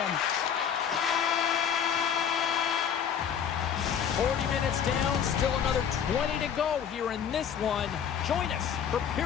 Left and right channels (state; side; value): quieter; right; 8.2 dB